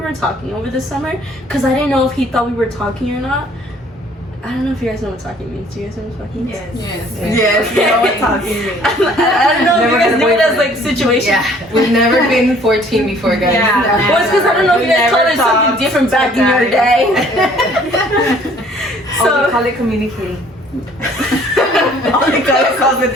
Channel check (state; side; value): normal; both; correlation 0.57